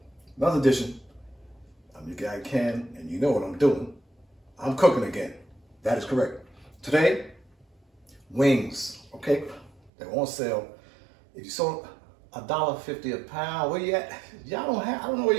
Another edition. I'm your guy Ken, and you know what I'm doing. I'm cooking again. That is correct. Today, wings, okay? They're on sale. If you saw $1.50 a pound, where you at? I don't know where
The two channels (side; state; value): left; drops out; at 9.9 s